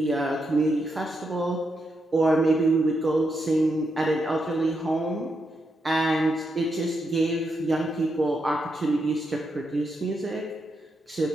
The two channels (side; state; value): both; normal; correlation 0.83